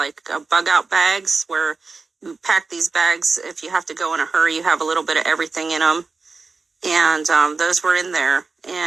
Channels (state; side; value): quieter; left; 4.2 dB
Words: bug out bags, where you pack these bags. If you have to go in a hurry, you have a little bit of everything in them. And those were in there.